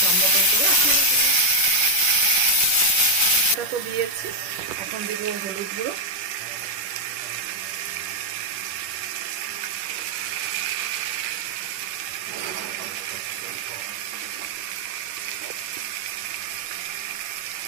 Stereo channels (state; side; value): late; left; 10 ms